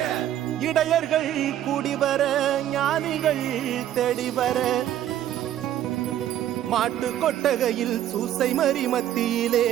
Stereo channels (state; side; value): quieter; left; 11.8 dB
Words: இடையர்கள் கூடி வர, ஞானிகள் தேடி வர, மாட்டு கொட்டகையில் சூசை மறி மத்தியிலே